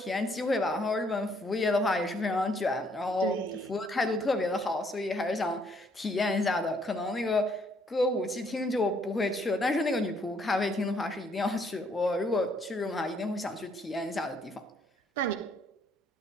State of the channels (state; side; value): normal; both; correlation 0.67